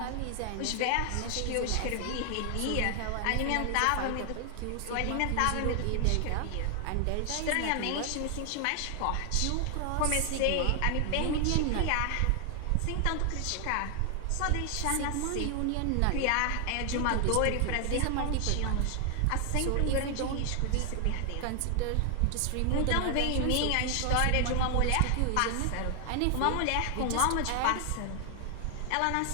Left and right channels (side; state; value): both; different; correlation 0.00